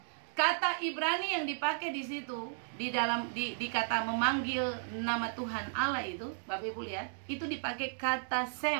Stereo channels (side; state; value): left; silent; digital silence